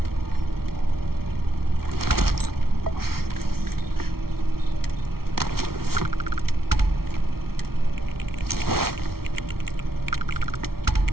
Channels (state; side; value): late; left; 0.94 ms